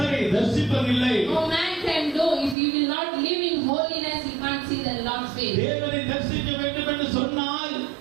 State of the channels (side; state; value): left; drops out; at 2.6 s